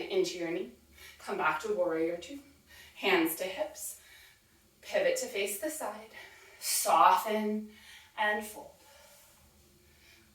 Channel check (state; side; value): identical; both; correlation 1.00